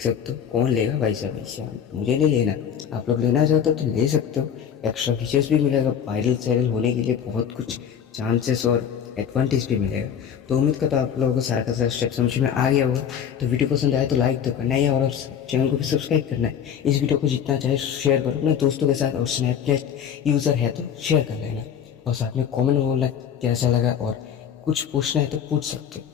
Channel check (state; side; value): quieter; right; 8.4 dB